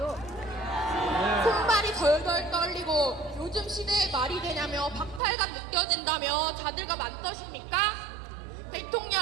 손발이 덜덜 떨리고 요즘 시대에 말이 되냐며 박탈감 느껴진다며 자들과 맞서십니까?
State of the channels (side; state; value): left; drops out; at 5.2 s